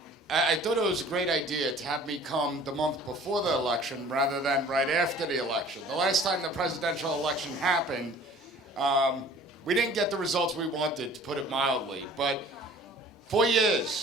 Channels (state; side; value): normal; both; correlation 0.49